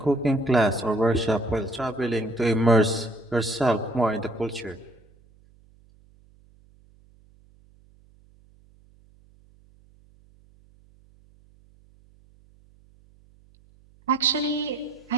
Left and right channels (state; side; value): noise; right; hum, 29 dB below the sound